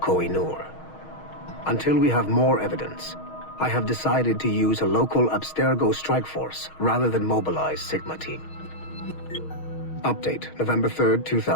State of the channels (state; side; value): late; right; 6.4 ms